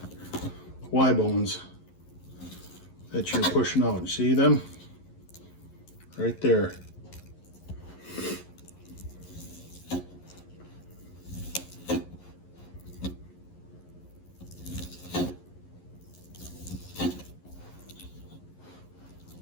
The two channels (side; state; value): right; late; 11 ms